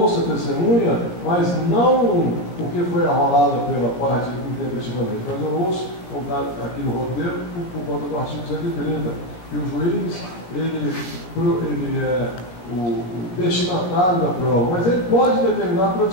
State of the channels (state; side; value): late; right; 16 ms